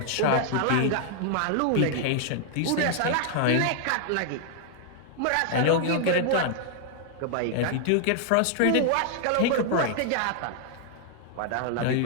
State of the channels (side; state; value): both; different; correlation 0.00